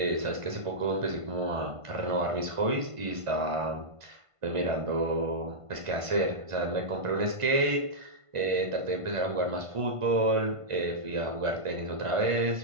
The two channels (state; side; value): late; left; 1.5 ms